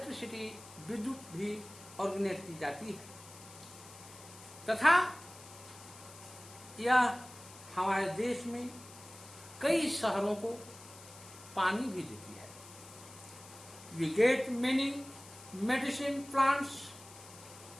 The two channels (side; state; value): left; noise; hiss, 18 dB below the sound